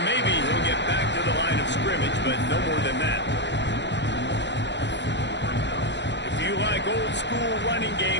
maybe he'll get back to the line of scrimmage, but no more than that. If you like old school running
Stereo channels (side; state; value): right; late; 0.51 ms